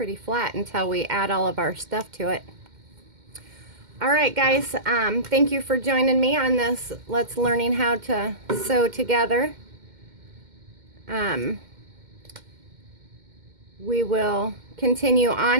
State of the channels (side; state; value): left; late; 2.1 ms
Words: flat until we add all of our stuff to it. All right, guys, thank you for joining me on this Let's Learning How to Sew Together. We will continue